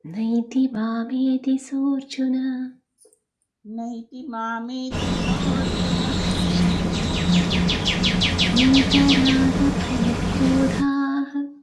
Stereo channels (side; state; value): both; identical; correlation 1.00